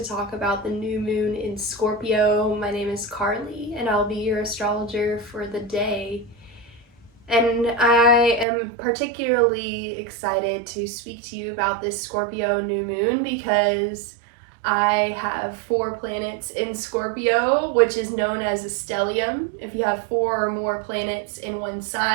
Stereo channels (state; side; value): drops out; left; at 8.5 s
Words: talk about the new moon in Scorpio. My name is Carly and I'll be your astrologer for the day. And I am particularly excited to speak to you about this Scorpio new moon because I have 4 planets in Scorpio, which is known as a stellium. If you have 4 or more planets in one